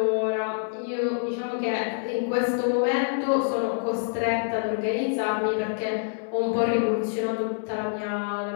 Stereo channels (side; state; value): right; silent; 61 dB below the other